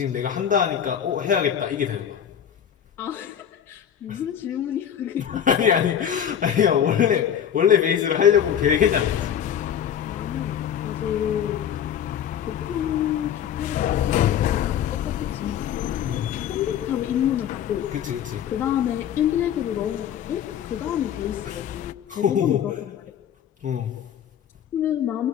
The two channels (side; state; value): right; quieter; 9.2 dB